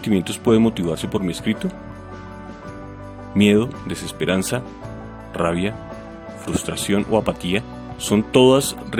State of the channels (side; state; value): both; identical; correlation 1.00